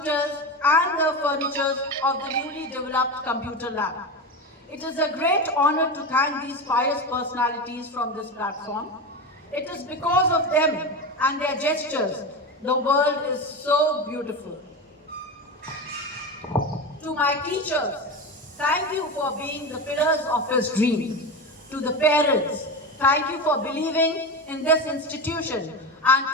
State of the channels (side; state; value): both; normal; correlation 0.21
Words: and the furniture of the newly developed computer lab. It is a great honor to thank these pious personalities from this platform. It is because of them and their gestures the world is so beautiful. To my teachers, thank you for being the pillars of his dream. To the parents, thank you for believing in this institution. And